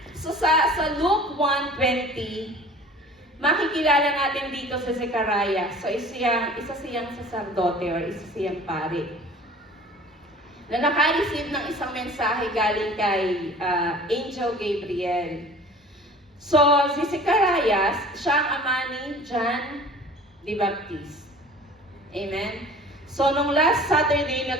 So sa Luke 1:20, makikilala natin dito sa Zechariah. So, isa siyang saserdote or isa siyang pari. Na naka-receive ng isang mensahe galing kay Angel Gabriel. So, si Zechariah, siya ang ama ni John the Baptist. Amen? So, nung last Saturday,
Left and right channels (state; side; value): normal; both; correlation 0.45